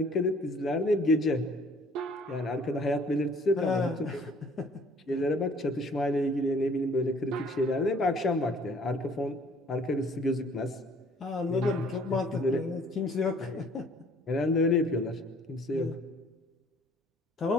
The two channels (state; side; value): normal; both; correlation 0.56